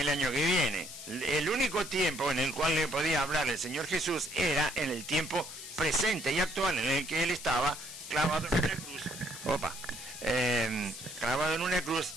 año que viene. El único tiempo en el cual le podía hablar el Señor Jesús era en el tiempo presente y actual, en el que él estaba clavado en una cruz, clavado en una cruz,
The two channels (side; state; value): left; noise; hiss, 11 dB below the sound